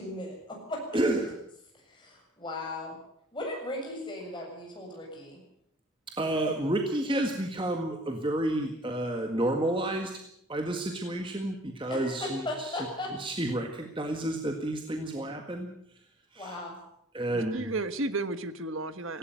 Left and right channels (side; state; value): both; normal; correlation 0.53